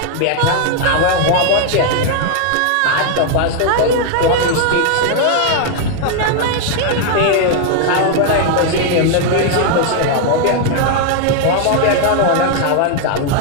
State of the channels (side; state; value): both; different; correlation 0.00